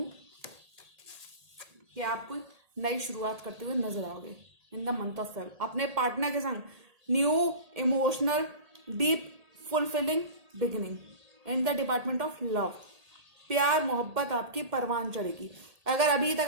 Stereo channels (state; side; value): late; left; 1.8 ms